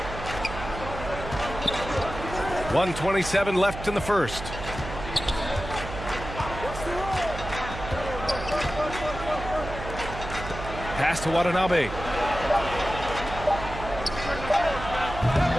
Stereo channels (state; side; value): noise; right; hum, 9 dB below the sound